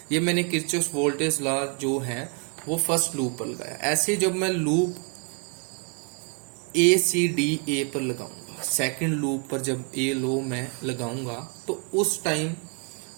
ये मैंने किरचॉफ वोल्टेज लॉ जो है वो फर्स्ट लूप पर लगाया। ऐसे जब मैं लूप ACDA पर लगाऊंगा, सेकंड लूप पर जब ए लो मैं लगाऊंगा तो उस टाइम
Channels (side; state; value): left; quieter; 38.4 dB